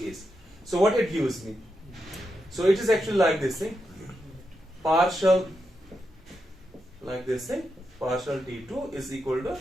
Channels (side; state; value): both; normal; correlation 0.86